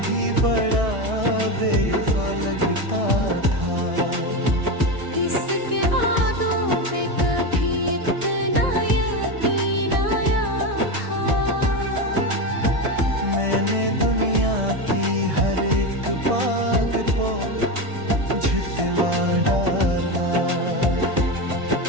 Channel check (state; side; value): late; left; 1.6 ms